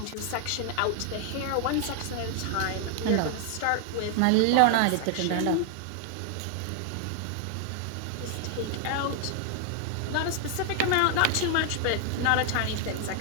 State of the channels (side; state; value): both; different; correlation 0.00